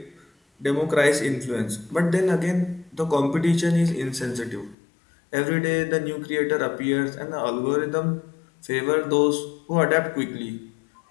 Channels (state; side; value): drops out; right; at 4.8 s